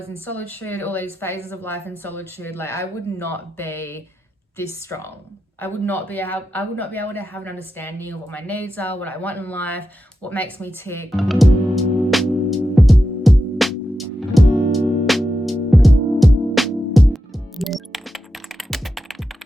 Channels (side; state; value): both; normal; correlation 0.89